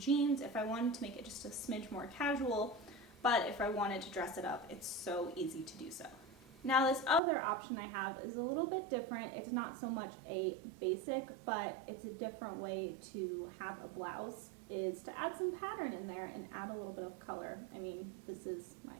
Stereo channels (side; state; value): left; drops out; at 7.2 s